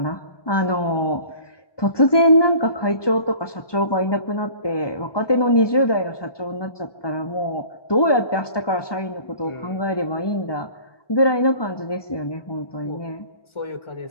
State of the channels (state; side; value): late; right; 1.2 ms